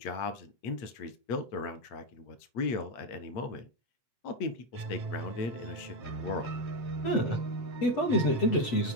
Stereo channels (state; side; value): late; right; 8.0 ms